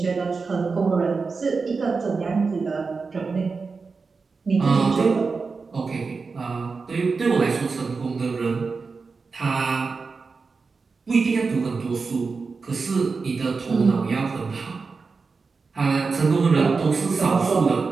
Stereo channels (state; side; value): quieter; left; 4.6 dB